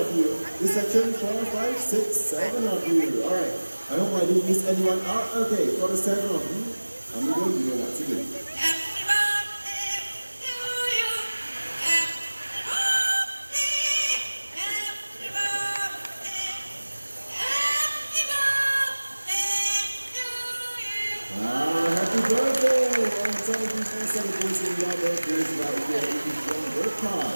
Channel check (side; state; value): both; inverted; correlation -1.00